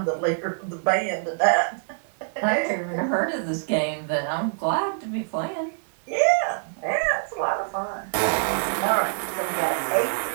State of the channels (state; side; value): silent; left; digital silence